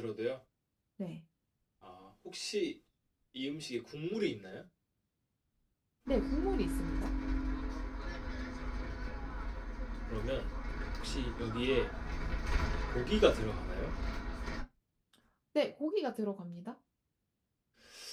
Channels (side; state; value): both; identical; correlation 1.00